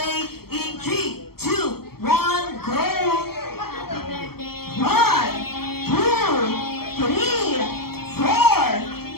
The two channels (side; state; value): right; late; 0.95 ms